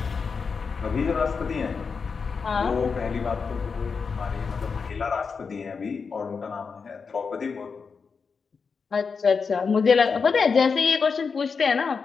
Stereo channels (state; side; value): quieter; right; 5.3 dB